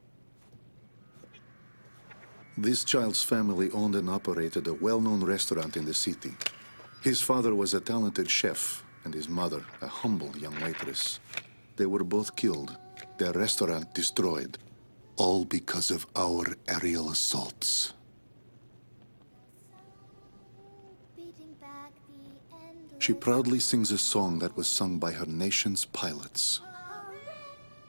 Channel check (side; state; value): both; inverted; correlation -1.00